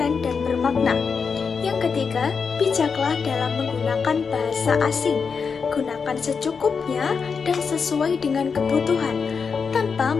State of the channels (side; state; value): right; quieter; 5.6 dB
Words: dan bermakna. Yang ketiga, bijaklah dalam menggunakan bahasa asing. Gunakan secukupnya dan sesuai dengan kebutuhan, tanpa